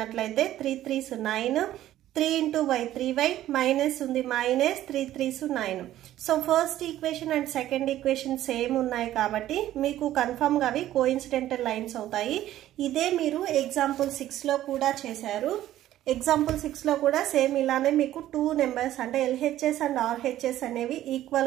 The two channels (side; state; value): left; quieter; 13.4 dB